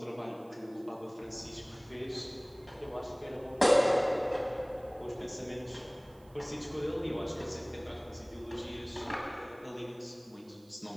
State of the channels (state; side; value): noise; right; hiss, 29 dB below the sound